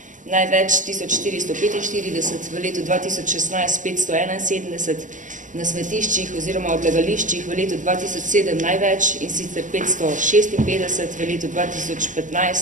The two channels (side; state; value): left; late; 0.37 ms